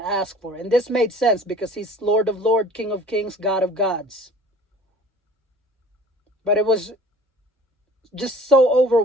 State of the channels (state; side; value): normal; both; correlation 0.47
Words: for." And this made sense because he's Lord of Lords, King of Kings, God of Gods. But it was just so